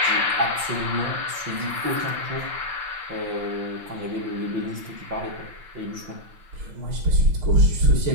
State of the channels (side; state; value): left; late; 5.9 ms